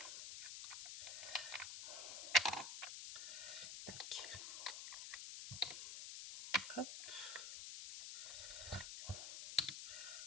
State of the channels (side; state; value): left; noise; hiss, 6 dB below the sound